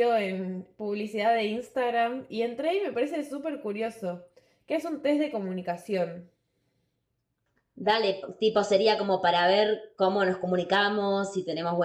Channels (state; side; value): identical; both; correlation 1.00